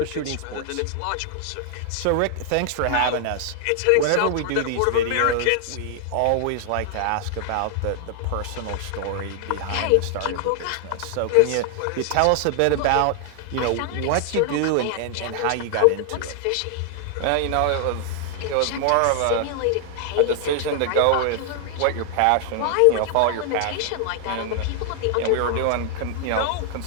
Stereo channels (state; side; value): different; both; correlation 0.00